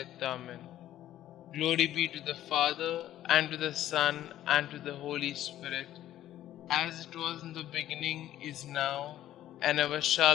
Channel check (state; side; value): quieter; right; 12.9 dB